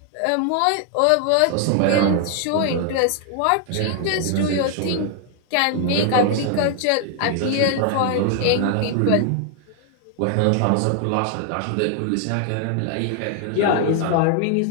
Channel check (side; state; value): both; different; correlation 0.00